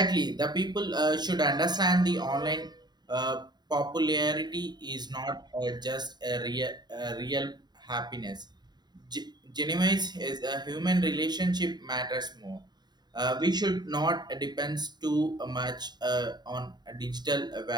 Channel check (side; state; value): left; late; 0.20 ms